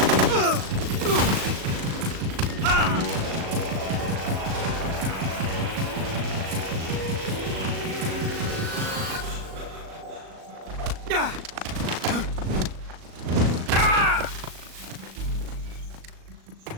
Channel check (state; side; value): late; left; 37 ms